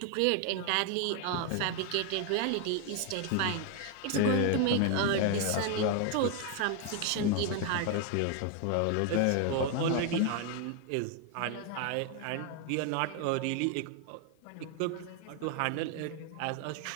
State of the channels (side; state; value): both; different; correlation 0.01